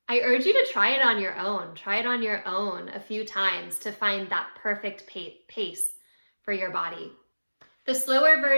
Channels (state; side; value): inverted; both; correlation -1.00